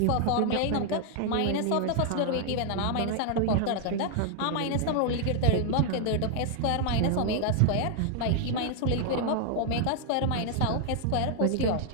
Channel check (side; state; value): both; different; correlation 0.00